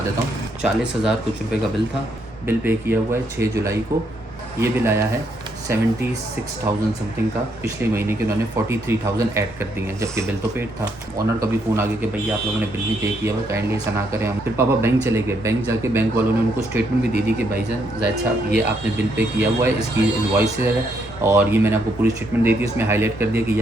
देता हूँ। 40,000 कुछ रुपए का बिल था। बिल पे किया हुआ है 6 जुलाई को। ये बिल आया है 76,000 समथिंग का। पिछले महीने के उन्होंने 43,000 ऐड कर दिए हैं, जबकि बिल तो पेड था। ऑनर का भी फ़ोन आ गया कि भैया आप लोगों ने बिल नहीं पे किया हुआ, काइंडली ऐसा ना करें। हम फिर पापा बैंक चले गए। बैंक जाके बैंक वालों ने उनको स्टेटमेंट भी दे दी कि भाईजान जायद साहब, ये आपने बिल पे किया हुआ है, इसकी इनवॉइस है और ये मैंने आपको पूरी स्टेटमेंट दे दी। इसमें हाईलाइट कर दिया कि ये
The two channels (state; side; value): normal; both; correlation 0.75